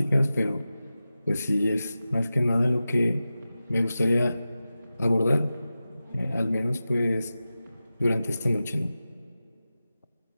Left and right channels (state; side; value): inverted; both; correlation -0.94